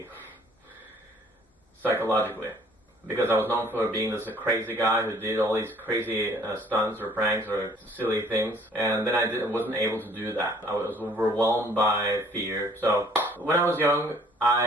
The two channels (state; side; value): normal; both; correlation 0.57